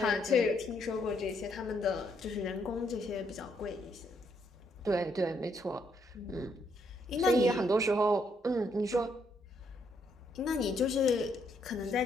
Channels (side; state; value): both; normal; correlation 0.74